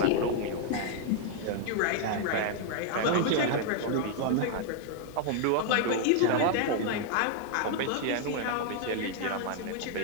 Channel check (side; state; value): both; different; correlation 0.00